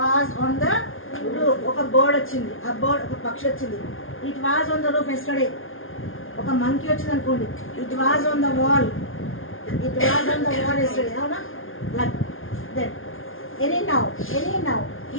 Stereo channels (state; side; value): late; right; 0.59 ms